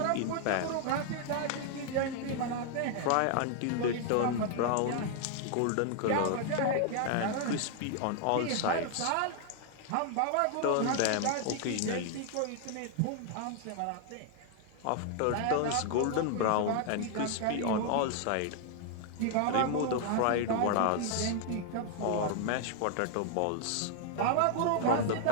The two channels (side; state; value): both; different; correlation 0.00